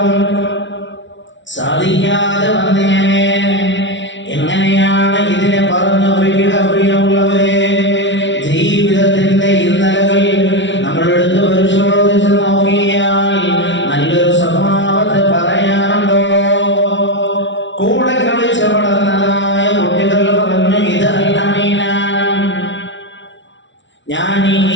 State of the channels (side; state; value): right; late; 0.54 ms